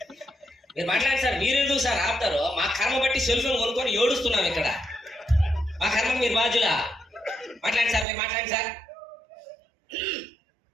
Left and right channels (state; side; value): drops out; left; at 8.1 s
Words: మీరు మాట్లాడండి సార్. మీరు ఎందుకు సార్ ఆపుతారు? మా కర్మ బట్టి సెల్ ఫోన్ కొనుక్కొని ఏడుస్తున్నాం ఇక్కడ. మా కర్మ మీరు బాధ్యులా? మాట్లాడండి సార్, మీరు మాట్లాడండి సార్.